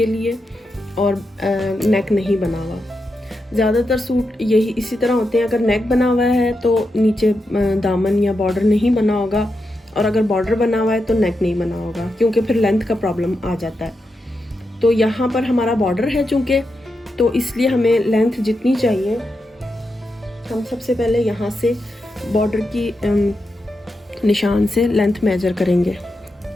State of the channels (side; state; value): both; normal; correlation 0.87